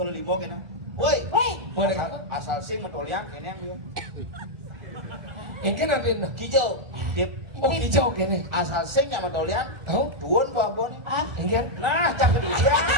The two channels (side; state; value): left; late; 1.4 ms